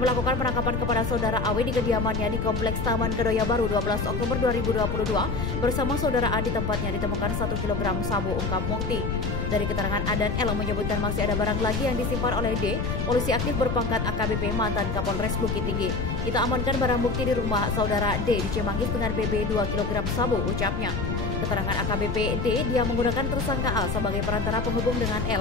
penangkapan kepada saudara Awi di kediamannya di Kompleks Taman Kedoya Baru 12 Oktober 2022. Bersama saudara A di tempatnya ditemukan 1 kg sabu, ungkap Mukti. Dari keterangan A dan L menyebutkan masih ada barang lagi yang disimpan oleh D, polisi aktif berpangkat AKBP mantan Kapolres Bukit Tinggi. Kita amankan barang bukti di rumah saudara D di Cimanggis dengan BB 2 kg sabu, ucapnya. Keterangan AKBP D, dia menggunakan tersangka A sebagai perantara penghubung dengan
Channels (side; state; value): left; noise; rumble, 2 dB below the sound